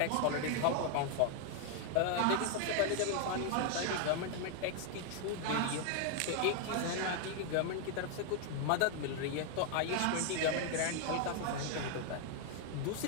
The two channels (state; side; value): different; both; correlation 0.00